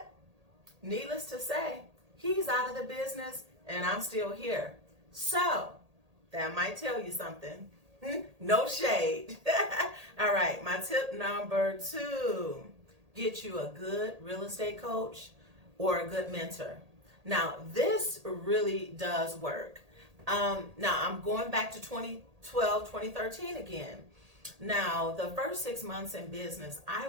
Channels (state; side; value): late; left; 1.8 ms